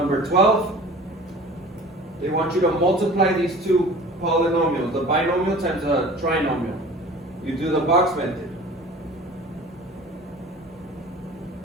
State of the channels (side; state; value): both; normal; correlation 0.42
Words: 12. They want you to multiply these two polynomials, the binomial times a trinomial. You do the box method.